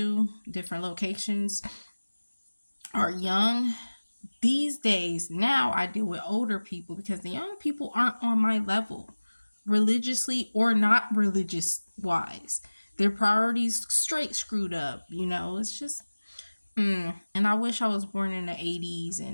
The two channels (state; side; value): inverted; both; correlation -1.00